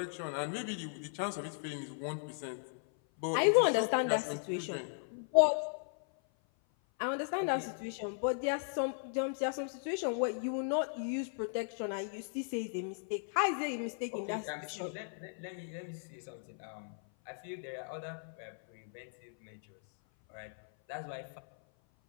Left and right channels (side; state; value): right; silent; 53 dB below the other